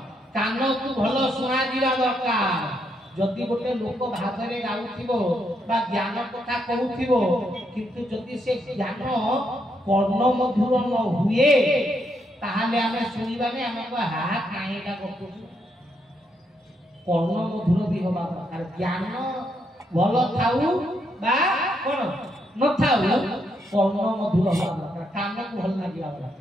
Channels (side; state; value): both; normal; correlation 0.77